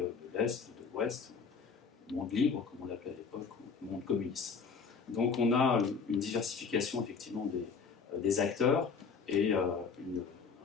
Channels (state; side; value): quieter; right; 5.5 dB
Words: l'Est, de l'Ouest, le monde libre, comme on l'appelait à l'époque, ou le monde communiste. Donc on a une diversification, effectivement, des acteurs, et un